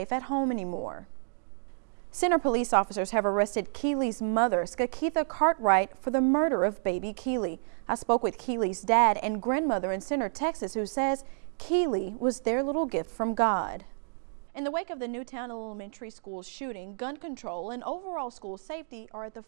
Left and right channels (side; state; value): left; silent; digital silence